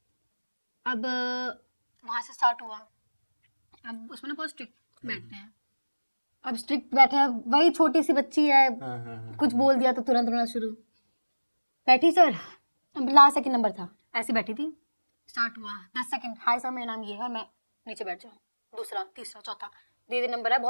अब वहां से स्टार्ट हुआ। अब उसमें ना बहुत स्ट्रिक्ट बैठते हैं। अब स्ट्रिक्ट बैठे हैं, वही छोटी सी बच्ची है, कुछ बोल दिया तो तुरंत रोना शुरू। बैठी सर, लास्ट सेकंड नंबर था, ऐसी बैठी थी। स्टार्ट हुआ 10 सेकंड, हाय सर मेरा नाम ये है, मैं नीचे बैठ जाऊँ, दूसरा, तीसरा, चौथा, दे नंबर है।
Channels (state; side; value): inverted; both; correlation -1.00